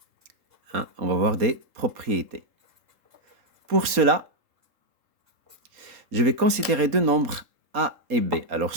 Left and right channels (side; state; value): left; late; 3.8 ms